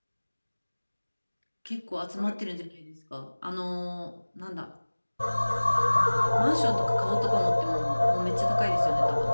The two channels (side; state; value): both; inverted; correlation -1.00